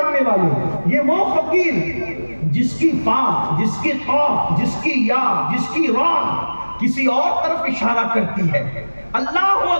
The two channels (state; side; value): inverted; both; correlation -1.00